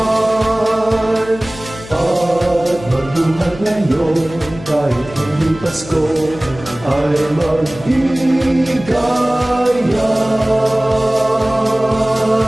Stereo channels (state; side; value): noise; left; hum, 16 dB below the sound